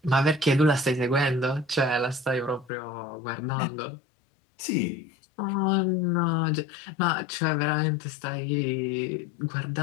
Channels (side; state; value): right; drops out; at 2.7 s